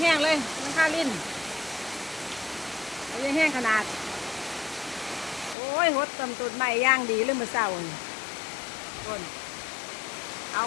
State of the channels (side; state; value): right; drops out; at 5.6 s